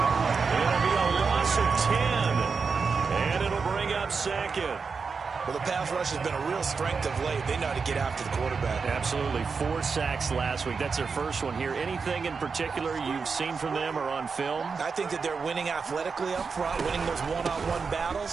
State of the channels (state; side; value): quieter; left; 5.2 dB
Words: It'll be a loss of 10. And it'll bring up 2nd. Well, the pass rush has been a real strength of late. They know how to get after the quarterback. Absolutely. 4 sacks last week. That's their first one here. Anything in particular you've seen from them or on film? I think that they're winning athletically up front, winning those one-on-one